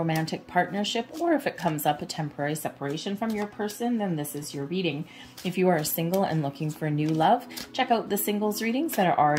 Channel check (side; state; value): both; identical; correlation 1.00